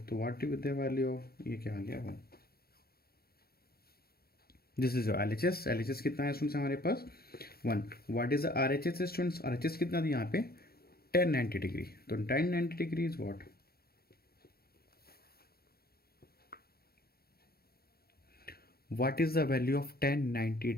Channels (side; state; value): right; late; 0.45 ms